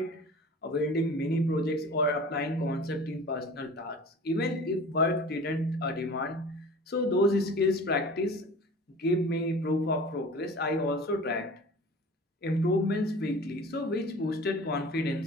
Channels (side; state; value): both; normal; correlation 0.41